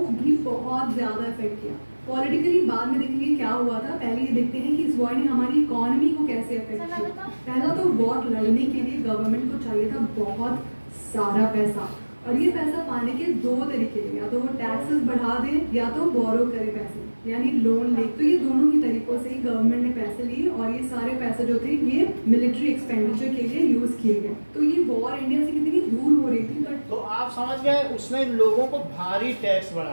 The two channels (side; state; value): both; inverted; correlation -1.00